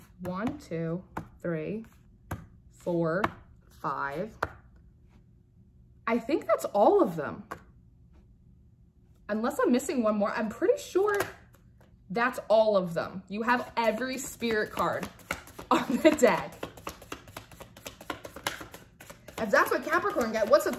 1, 2, 3, 4, 5. I think that's all of them. Unless I'm missing one more, I'm pretty sure that's all of them. You have every spirit card on the deck. If that's what Capricorn get, what's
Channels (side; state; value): both; identical; correlation 1.00